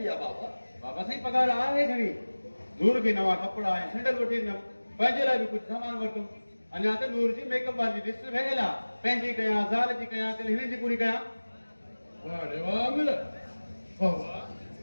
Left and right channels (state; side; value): inverted; both; correlation -1.00